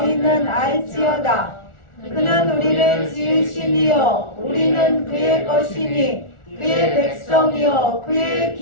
알지어다. 그는 우리를 지으시니요 우리는 그의 것이니 그의 백성이요 그의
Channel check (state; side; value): late; right; 1.4 ms